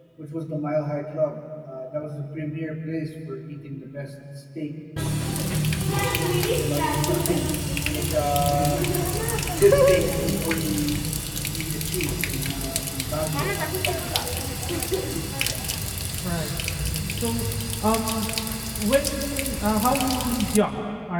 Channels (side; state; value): both; identical; correlation 1.00